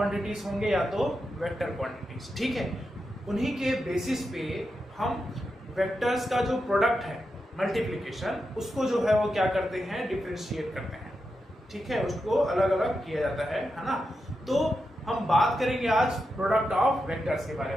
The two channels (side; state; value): both; normal; correlation 0.88